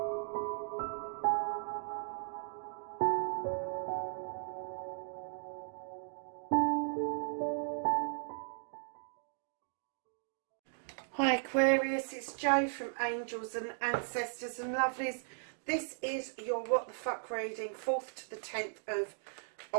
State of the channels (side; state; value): left; silent; digital silence